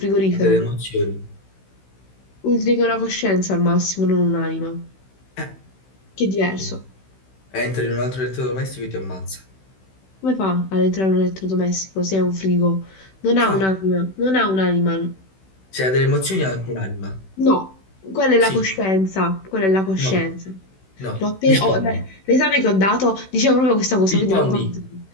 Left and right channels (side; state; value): right; late; 16 ms